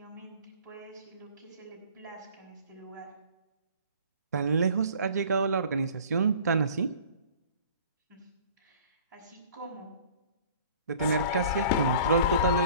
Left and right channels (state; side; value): inverted; both; correlation -0.48